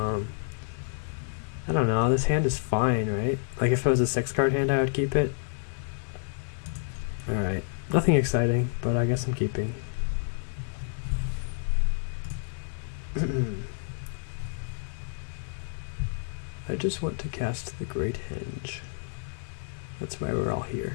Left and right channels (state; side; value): silent; right; 57 dB below the other